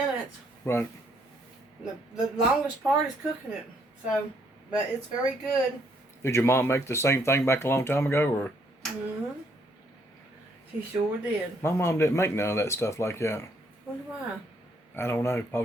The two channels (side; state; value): both; normal; correlation 0.69